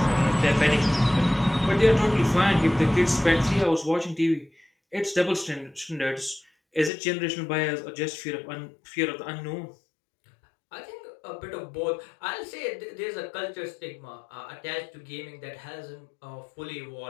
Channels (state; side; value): drops out; right; at 6.9 s